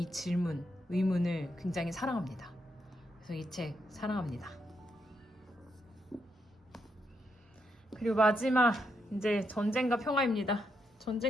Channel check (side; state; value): both; normal; correlation 0.80